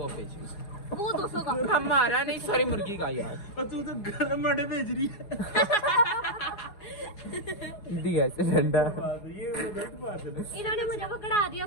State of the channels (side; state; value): right; late; 4.8 ms